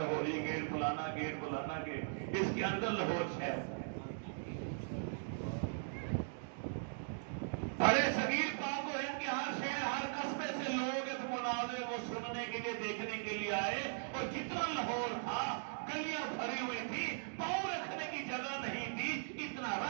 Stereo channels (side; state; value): left; silent; digital silence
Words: گیٹ, فلانا گیٹ, فلانا گیٹ, اس کے اندر لاہور شہر تھا. بڑے صغیر پاک و ہند کے ہر شہر, ہر قصبے سے لوگ اس مناظرے کو سننے کے لیے, دیکھنے کے لیے آئے, اور جتنا لاہور تھا گلیاں بھری ہوئی تھی, پاؤں رکھنے کی جگہ نہیں تھی, اتنا